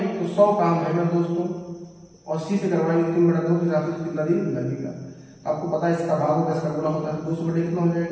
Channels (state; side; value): identical; both; correlation 1.00